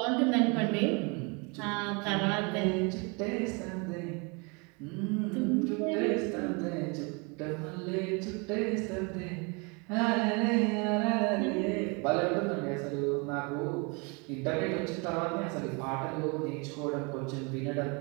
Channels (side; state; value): left; quieter; 30.9 dB